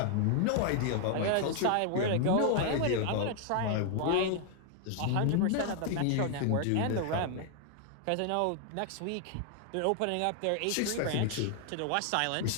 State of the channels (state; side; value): different; both; correlation 0.00